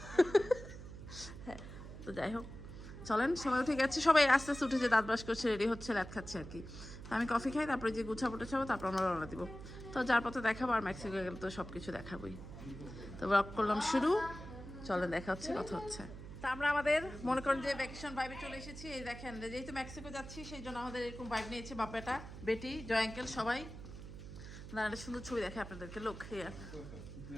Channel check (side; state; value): right; noise; hum, 12 dB below the sound